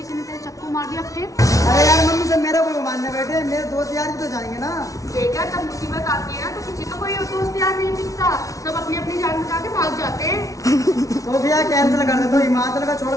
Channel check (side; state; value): right; late; 0.17 ms